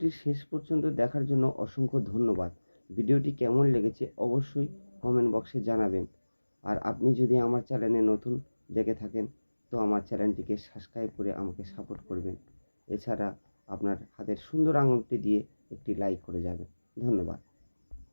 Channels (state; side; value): inverted; both; correlation -1.00